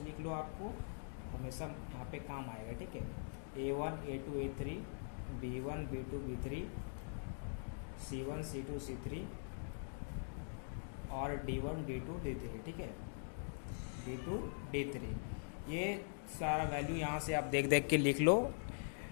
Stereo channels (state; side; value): silent; right; digital silence